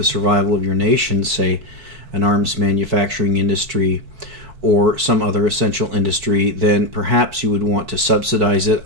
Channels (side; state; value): left; late; 4.5 ms